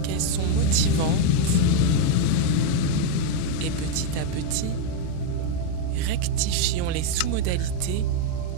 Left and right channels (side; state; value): both; different; correlation 0.02